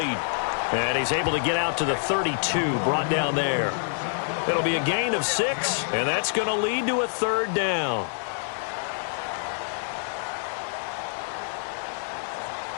And he's able to get out to the 32, brought down there. It'll be a gain of 6, and that's going to lead to a third down.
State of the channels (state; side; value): silent; right; digital silence